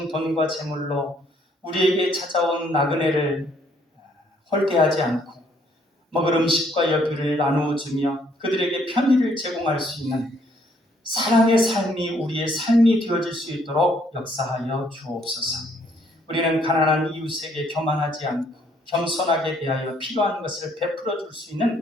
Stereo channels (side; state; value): both; normal; correlation 0.66